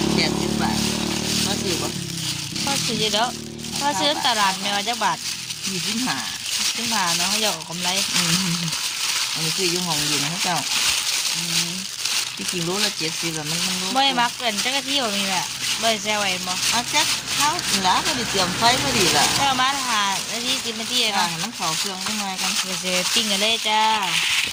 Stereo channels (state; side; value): identical; both; correlation 1.00